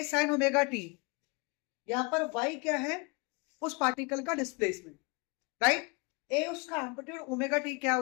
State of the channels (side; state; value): right; quieter; 30.1 dB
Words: sine omega T. यहां पर y क्या है? उस पार्टिकल का डिस्प्लेसमेंट, राइट। ए उसका एम्पलीट्यूड, ओमेगा टी क्या है?